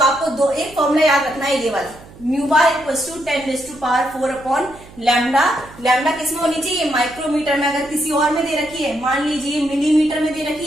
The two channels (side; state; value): right; noise; hum, 21 dB below the sound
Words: आपको एक फॉर्मूला याद रखना है ये वाला, nu bar equals to 10⁴ upon lambda. Lambda किस में होनी चाहिए, माइक्रोमीटर में। अगर किसी और में दे रखी है, मान लीजिए मिलीमीटर में दे